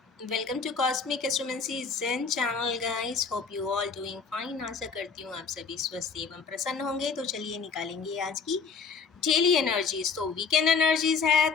Welcome to cosmic astromancy zen channel guys. Hope you all doing fine. आशा करती हूँ आप सभी स्वस्थ एवं प्रसन्न होंगे। तो चलिए निकालेंगे आज की डेली एनर्जीज। तो वीकेंड एनर्जीज है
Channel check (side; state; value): right; quieter; 5.3 dB